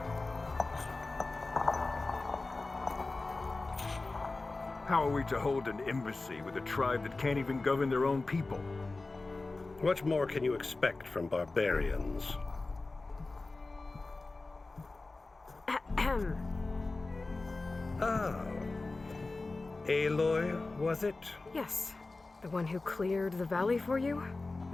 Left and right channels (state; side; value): quieter; right; 3.4 dB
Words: How are we to hold an embassy with a tribe that can't even govern their own people? What more can you expect from barbarians? Oh. Aloy, was it? Yes. The one who cleared the valley for you?